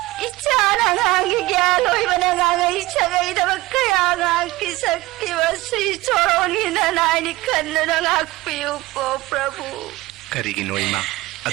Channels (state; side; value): quieter; left; 19.5 dB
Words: इच्छाना गांगी ज्ञान होई बना गांगा इच्छा गई दब कया गांगी शक्ति वसी छोड़ोनी नानी खन्ना गांगी को प्रभु करीगी नो इमा